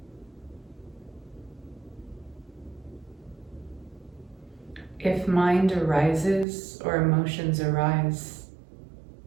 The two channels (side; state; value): left; drops out; at 6.5 s